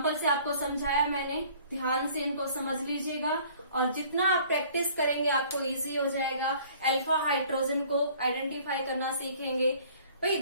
से आपको समझाया मैंने, ध्यान से इनको समझ लीजिएगा और जितना आप प्रैक्टिस करेंगे आपको इजी हो जाएगा। अल्फा हाइड्रोजन को आइडेंटिफाई करना सीखेंगे। भाई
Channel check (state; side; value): inverted; both; correlation -0.53